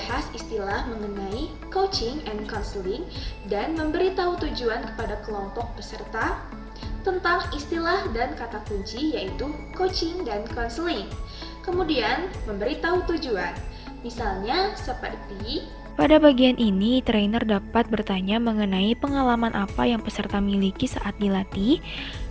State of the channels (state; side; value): identical; both; correlation 1.00